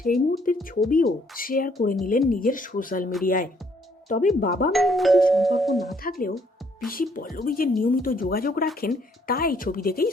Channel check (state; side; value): normal; both; correlation 0.67